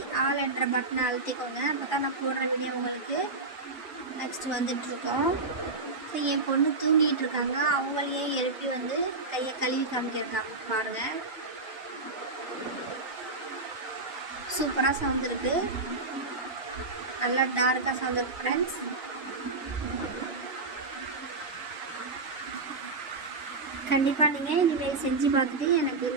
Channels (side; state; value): left; quieter; 3.5 dB